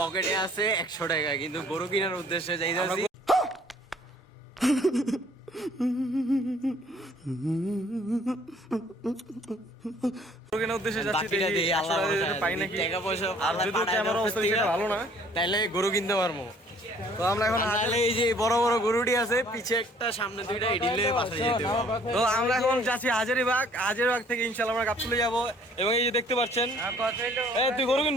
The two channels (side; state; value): both; normal; correlation 0.58